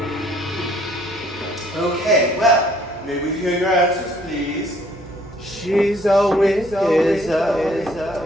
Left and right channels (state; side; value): normal; both; correlation 0.61